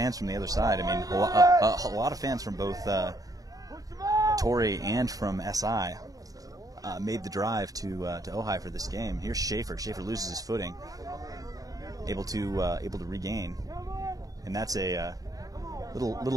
from the other side. I mean, a lot of fans from both Torrey and from SI made the drive to Ojai for this game. Here's Schaefer. Schaefer loses his footing, able to regain, and that's a little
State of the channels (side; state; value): left; late; 0.17 ms